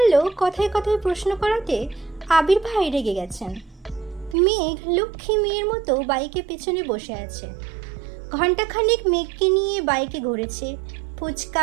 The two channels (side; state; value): left; drops out; at 4.4 s